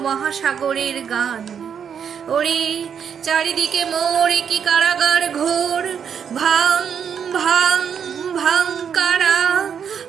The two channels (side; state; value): left; quieter; 7.6 dB